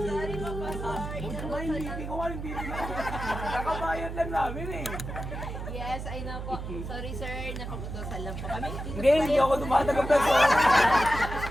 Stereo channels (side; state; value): right; noise; hum, 7 dB below the sound